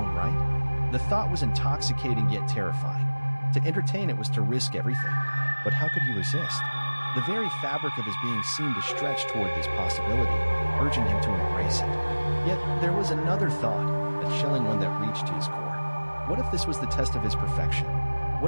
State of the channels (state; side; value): inverted; both; correlation -1.00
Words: right? The thought was intoxicating yet terrifying. To entertain it was to risk everything. But how could he resist? The very fabric of his being seemed to stretch toward this possibility, urging him to embrace it. Yet there was another thought, a chilling one that reached to his core. What if this was the test of his perfection?